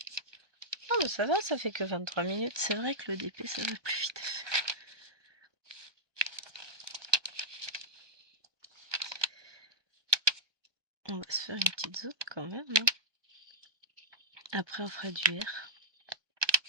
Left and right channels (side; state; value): left; late; 1.2 ms